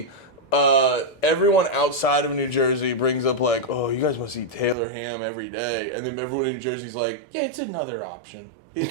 everyone outside of New Jersey brings up like, oh, you guys must eat Taylor ham every day, and then everyone in New Jersey's like, yeah, it's another option.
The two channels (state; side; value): drops out; left; at 4.8 s